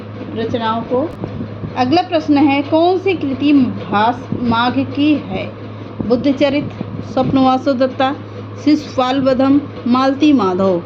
रचनाओं को। अगला प्रश्न है, कौन सी कृति भास माघ की है? बुद्धचरित, स्वप्नवासो दत्ता, शिशुपाल वधम, मालती माधव।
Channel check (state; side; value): identical; both; correlation 1.00